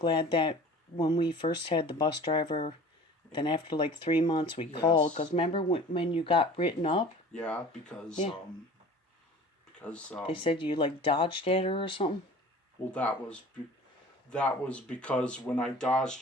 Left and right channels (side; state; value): both; normal; correlation 0.43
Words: that when we first had the bus driver, then after like 3 months we called, because remember when you got written up? Yeah, because they said you like dodged at her or something. Well, that was because when I dodged